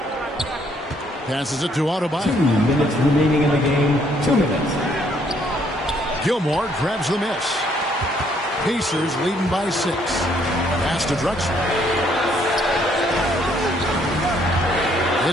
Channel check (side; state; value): both; normal; correlation 0.67